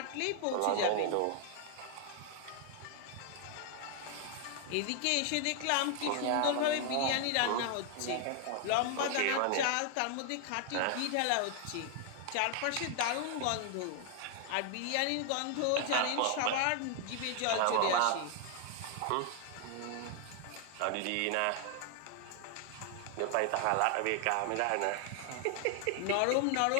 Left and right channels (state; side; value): different; both; correlation 0.00